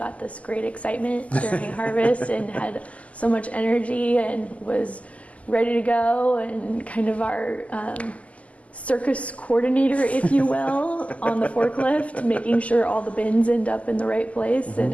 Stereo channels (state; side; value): late; right; 0.068 ms